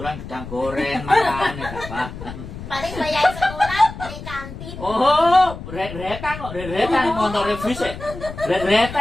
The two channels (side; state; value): left; noise; rumble, 11 dB below the sound